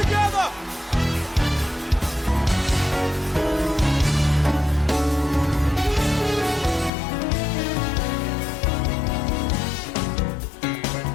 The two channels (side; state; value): right; drops out; at 6.9 s